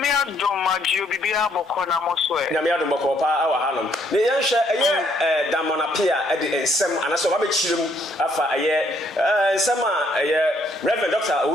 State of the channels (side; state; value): both; normal; correlation 0.68